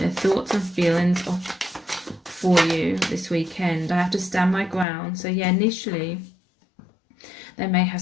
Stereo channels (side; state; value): right; drops out; at 4.9 s